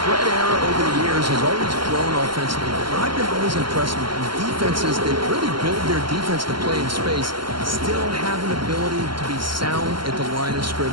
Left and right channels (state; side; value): late; left; 0.72 ms